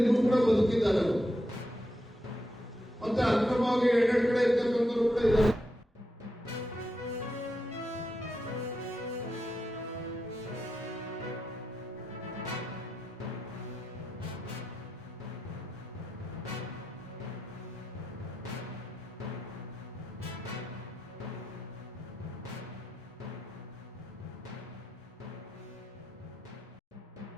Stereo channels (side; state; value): both; normal; correlation 0.86